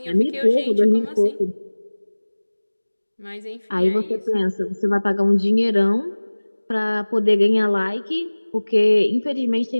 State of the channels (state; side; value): inverted; both; correlation -1.00